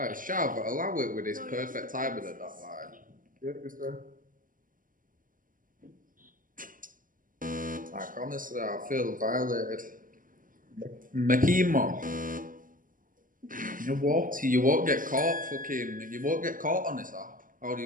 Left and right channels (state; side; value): late; left; 0.39 ms